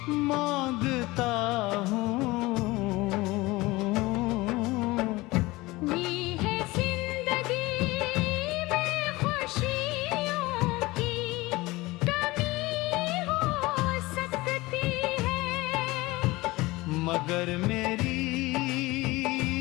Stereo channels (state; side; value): quieter; right; 20.9 dB